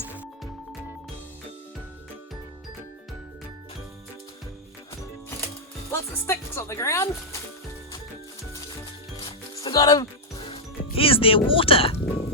Lots of sticks on the ground. Still got them. Here's their water.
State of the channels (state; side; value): normal; both; correlation -0.04